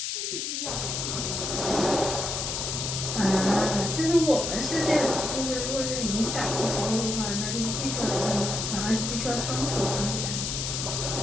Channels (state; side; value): noise; left; hiss, 2 dB below the sound